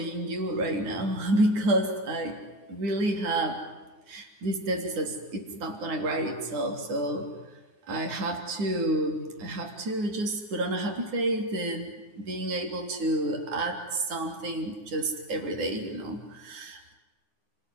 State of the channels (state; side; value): late; left; 9.7 ms